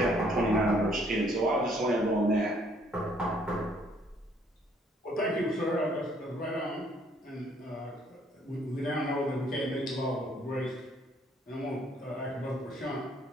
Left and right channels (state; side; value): normal; both; correlation 0.64